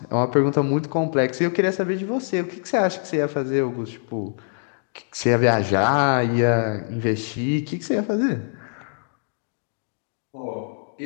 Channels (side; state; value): right; silent; digital silence